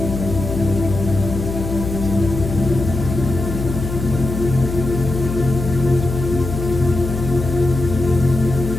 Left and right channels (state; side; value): noise; left; hum, 6 dB below the sound